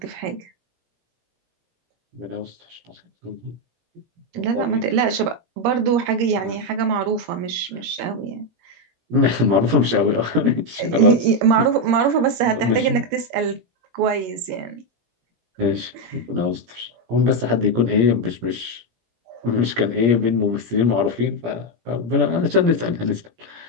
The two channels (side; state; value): left; late; 17 ms